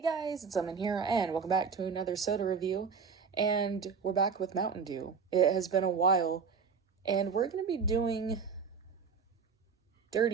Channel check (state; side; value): quieter; left; 5.8 dB